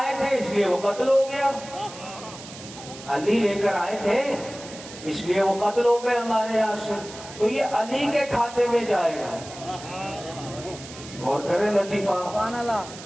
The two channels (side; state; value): right; noise; hiss, 15 dB below the sound